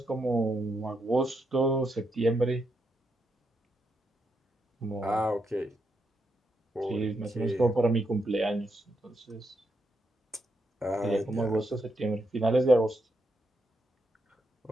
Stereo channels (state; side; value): normal; both; correlation 0.81